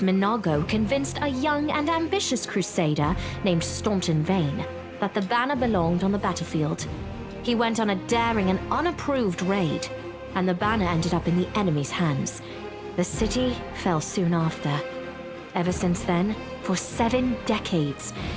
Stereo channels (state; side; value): identical; both; correlation 1.00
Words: convinced a young and ambitious crusader named Staunton Vane that the banner belonged on the battlefield. He went on a daring and unapproved raid, and the banner ended up in the enemy's hands. The city fell soon after. Ever since then, for 7 decades,